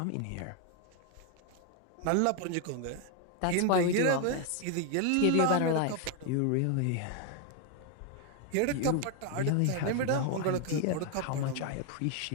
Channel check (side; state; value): both; different; correlation 0.01